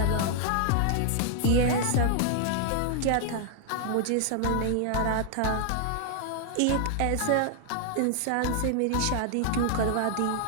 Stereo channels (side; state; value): both; different; correlation 0.00